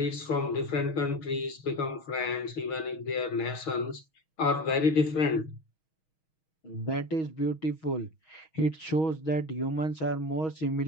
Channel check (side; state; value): right; late; 6.3 ms